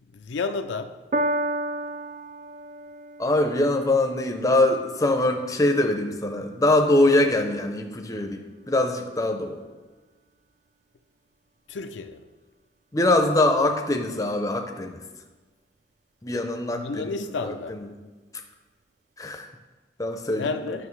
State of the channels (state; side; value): normal; both; correlation 0.51